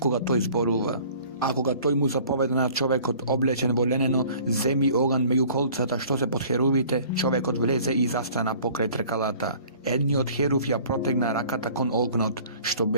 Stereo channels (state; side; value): inverted; both; correlation -0.50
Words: тој зборува. А кога тој му заповеда на човекот облечен во ленено, земи оган меѓу колцата што се под херувите, човекот влезе и застана покрај тркалата. Едниот херув ја протегна раката кон огнот, што